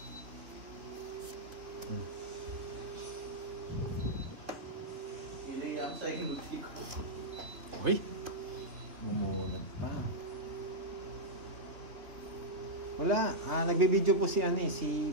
Iniyan sa inuti ko. Uy! Bumunod pa. Wala. Nagbibideo po si si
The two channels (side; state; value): left; late; 2.9 ms